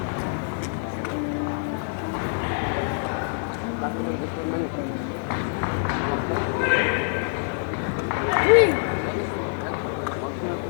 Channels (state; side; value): silent; right; digital silence